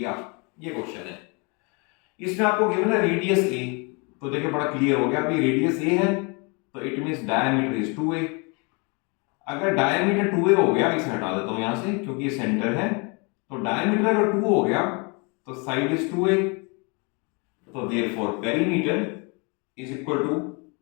ये क्वेश्चन है। इसमें आपको गिवन है रेडियस a, तो देखिए बड़ा क्लियर हो गया, अभी रेडियस a है तो it means diameter is 2a। अगर डायमीटर 2a हो गया, इसे हटा देता हूं यहां से क्योंकि ये सेंटर है, तो डायमीटर अगर 2 हो गया तो साइड इज 2a, तो therefore perimeter is equal to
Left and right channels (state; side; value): quieter; right; 31.7 dB